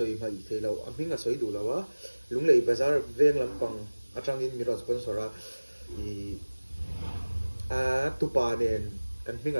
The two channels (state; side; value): inverted; both; correlation -1.00